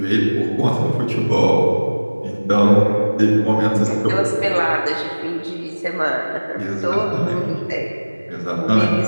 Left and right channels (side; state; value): both; inverted; correlation -1.00